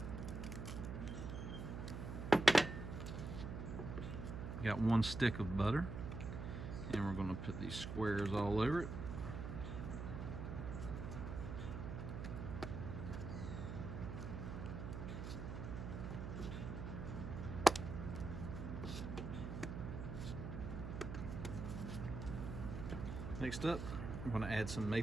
Got 1 stick of butter, and we're going to put these squares all over it. Next up, I'm going to add some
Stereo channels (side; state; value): right; noise; hum, 5 dB below the sound